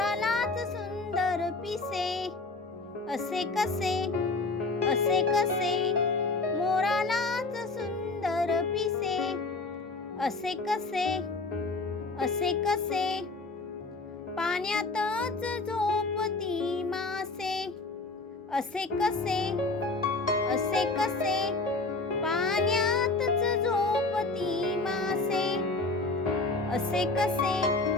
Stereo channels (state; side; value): quieter; right; 3.5 dB